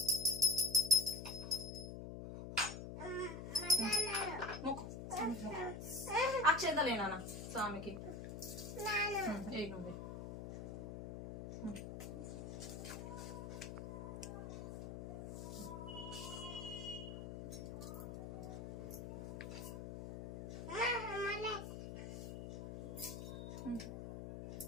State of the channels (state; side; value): noise; left; hum, 7 dB below the sound